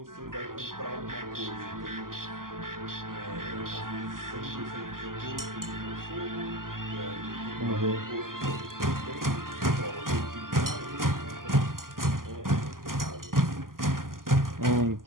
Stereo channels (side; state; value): left; late; 0.91 ms